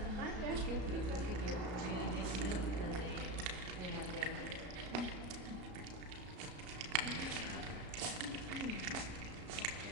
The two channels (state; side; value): late; left; 33 ms